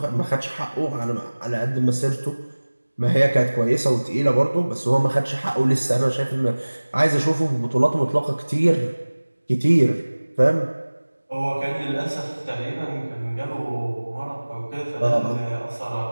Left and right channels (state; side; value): inverted; both; correlation -1.00